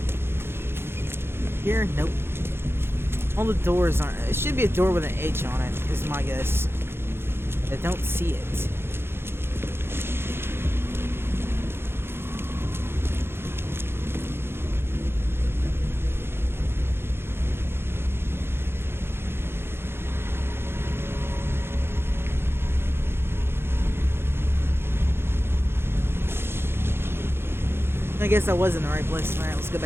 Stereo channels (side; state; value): left; late; 0.11 ms